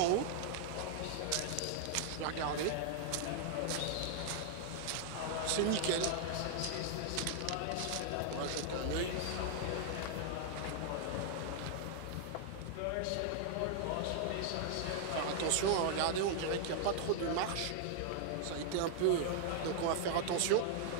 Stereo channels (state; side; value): different; both; correlation 0.00